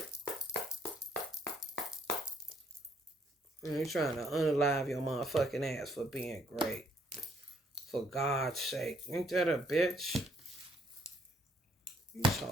And you're trying to unalive your motherfucking ass for being great. For God's sake. Ain't that a bitch? These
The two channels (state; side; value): normal; both; correlation 0.67